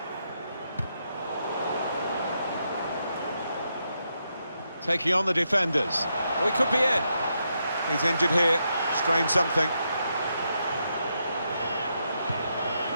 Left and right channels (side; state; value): both; inverted; correlation -0.81